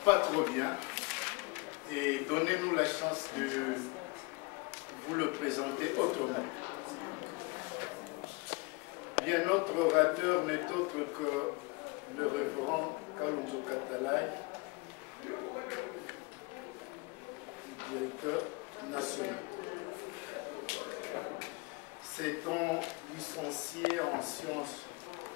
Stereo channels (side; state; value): right; quieter; 27.0 dB